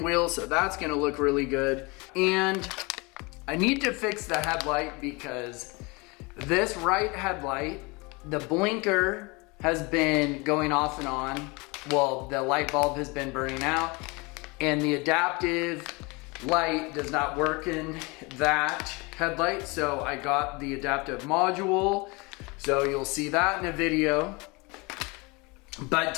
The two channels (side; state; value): right; quieter; 27.1 dB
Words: wheel, so that's gonna look really good. And I need to fix the headlight because this right headlight, the blinker has been going off and on. Well, the light bulb has been burning out, and the adaptive light does not work in that headlight, so I got the adaptive module, so you'll see that in a video. But